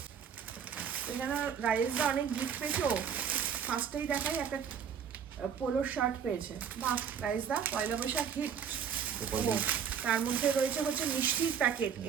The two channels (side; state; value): left; quieter; 7.5 dB